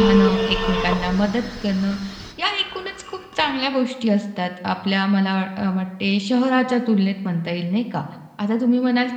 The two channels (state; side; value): identical; both; correlation 1.00